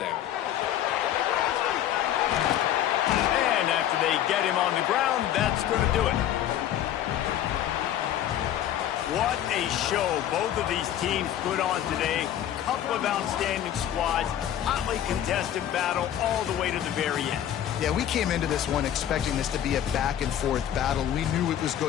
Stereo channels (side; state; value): right; quieter; 11.1 dB